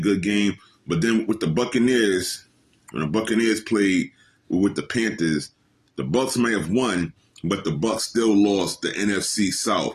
game. But then with the Buccaneers, when the Buccaneers played with the Panthers, the Bucs may have won, but the Bucs still lost the NFC South.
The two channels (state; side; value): identical; both; correlation 1.00